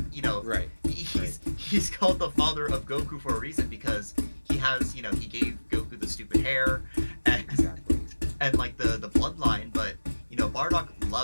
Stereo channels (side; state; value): both; inverted; correlation -1.00